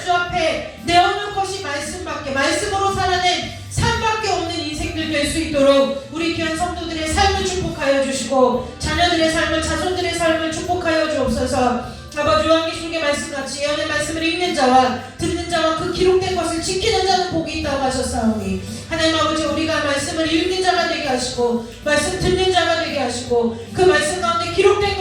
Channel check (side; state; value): both; identical; correlation 1.00